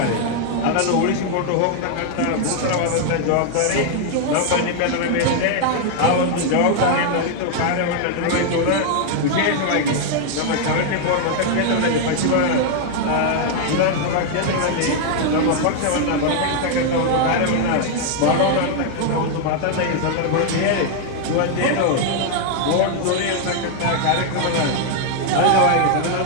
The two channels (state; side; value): different; both; correlation 0.00